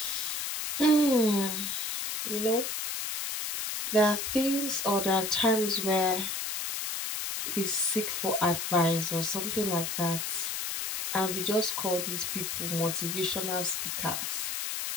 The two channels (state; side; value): noise; left; hiss, 3 dB below the sound